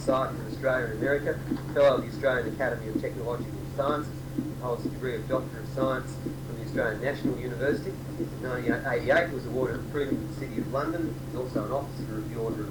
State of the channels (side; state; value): both; identical; correlation 1.00